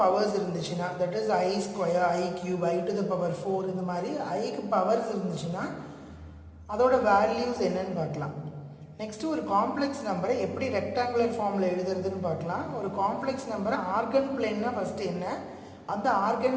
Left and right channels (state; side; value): identical; both; correlation 1.00